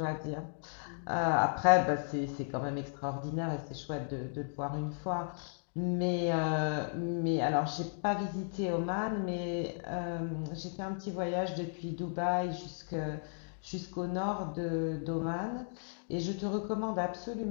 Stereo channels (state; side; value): silent; right; digital silence